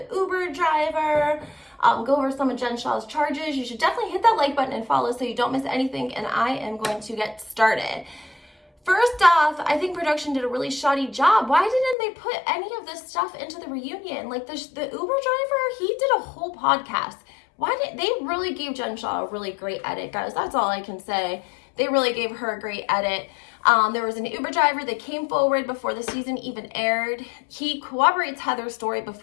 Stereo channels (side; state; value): right; drops out; at 12.0 s